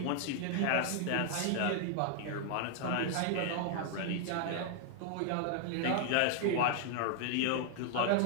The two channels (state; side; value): different; both; correlation 0.00